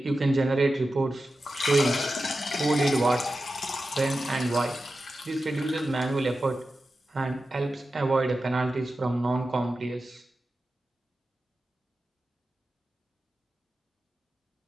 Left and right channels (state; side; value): normal; both; correlation 0.92